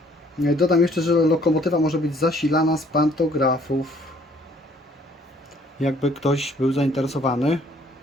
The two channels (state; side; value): normal; both; correlation 0.61